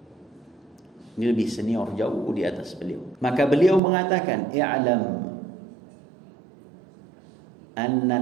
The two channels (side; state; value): left; drops out; at 3.8 s